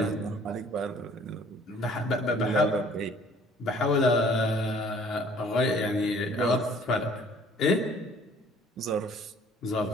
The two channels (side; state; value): both; normal; correlation 0.55